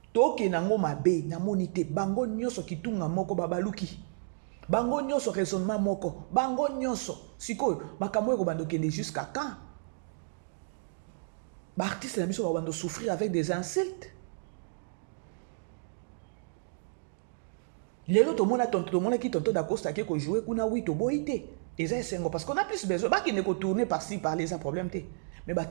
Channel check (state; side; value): silent; left; digital silence